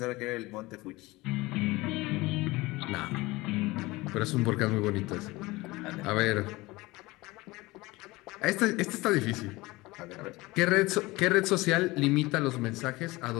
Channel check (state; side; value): quieter; right; 21.2 dB